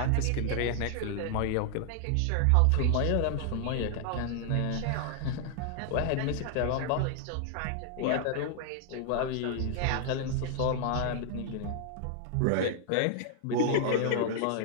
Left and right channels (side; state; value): both; different; correlation 0.00